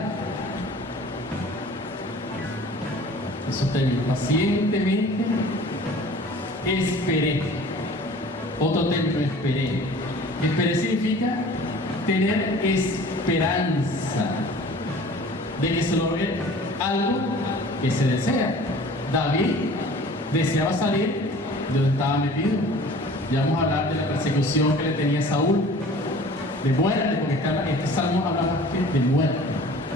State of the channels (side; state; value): both; normal; correlation 0.46